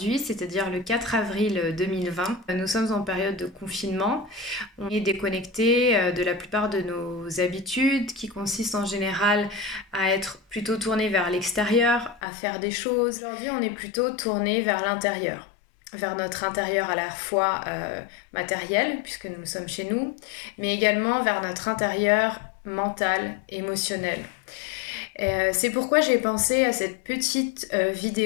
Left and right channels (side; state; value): right; drops out; at 12.2 s